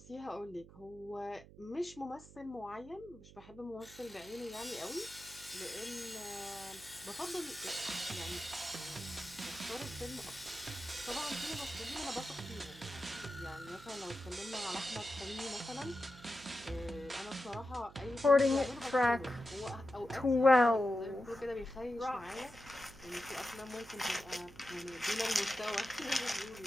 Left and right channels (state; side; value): noise; right; hum, 19 dB below the sound